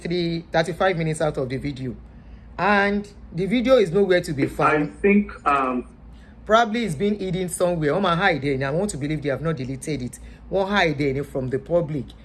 35 minutes out of the video. And the video is nowhere to be found. I think probably it's been hidden somewhere. On my hide there, and I want to believe they have not deleted it. Won't hide there from the public.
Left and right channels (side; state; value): both; identical; correlation 1.00